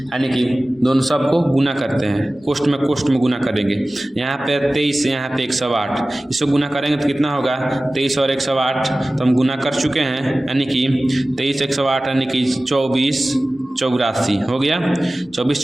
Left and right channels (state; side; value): normal; both; correlation 0.97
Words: यानी कि दोनों सब को गुना करते हैं, कोष्ठ में गुना करेंगे। यहाँ पे 23, यहाँ पे 108, इसको गुना करेंगे तो कितना होगा 23 और 108, तो हम गुना कर चुके हैं, यानी कि 23 108 यानी कि 24 84 हो गया, 24